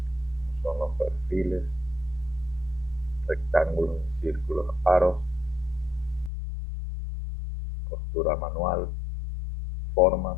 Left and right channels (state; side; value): drops out; right; at 6.3 s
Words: Son los perfiles, rectángulos, círculos, aros, costura manual, formas.